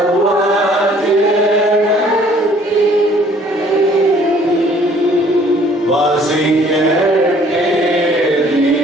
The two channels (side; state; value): both; normal; correlation 0.57